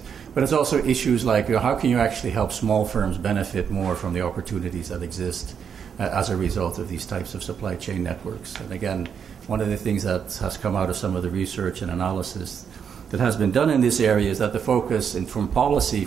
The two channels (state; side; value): quieter; left; 7.3 dB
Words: but it's also issues like how can you actually help small firms benefit more from the opportunities that exist as a result of these types of supply chain networks. And again, one of the things that has come out of some of the research and analysis that has been done in this area is that the focus from a policy